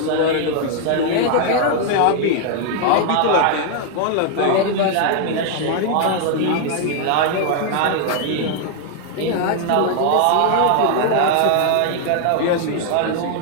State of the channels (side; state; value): both; different; correlation 0.00